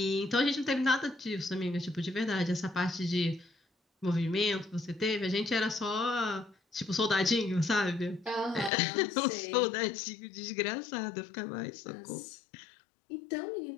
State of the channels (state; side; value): drops out; right; at 8.7 s